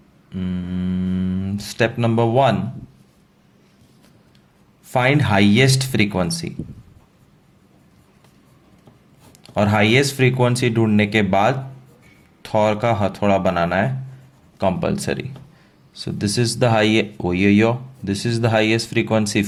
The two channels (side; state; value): both; identical; correlation 1.00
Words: Step number 1, find highest frequency. और हाईएस्ट फ्रीक्वेंसी ढूंढने के बाद थॉर का हथौड़ा बनाना है compulsory. So this is the this is the highest frequency